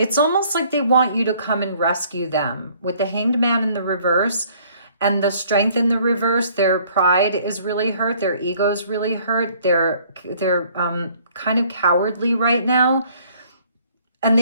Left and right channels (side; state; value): both; inverted; correlation -0.59